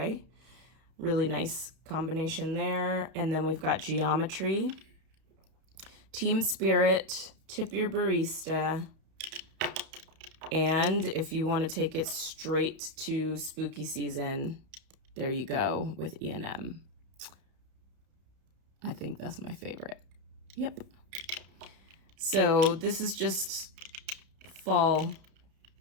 Really nice combination there. And then we've got Geometry, Team Spirit, Tip Your Barista, and if you want to take it straight to spooky season, there you go with E&M. I think that's my favorite. Yep. So this is just fall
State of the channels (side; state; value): left; late; 31 ms